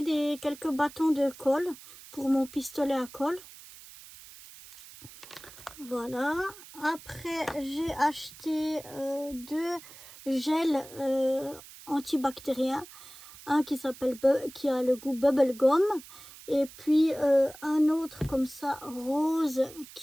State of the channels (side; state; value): right; noise; hiss, 18 dB below the sound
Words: quelques bâtons de colle pour mon pistolet à colle. Voilà. Après j'ai acheté 2 gels antibactériens. Un qui a le goût bubblegum. Et puis un autre comme ça, rose,